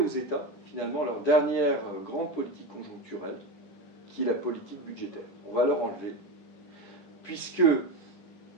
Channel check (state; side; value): late; right; 9.9 ms